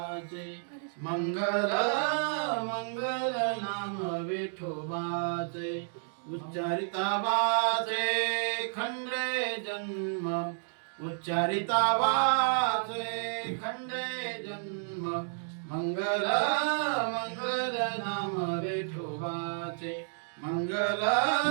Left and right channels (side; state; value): left; silent; digital silence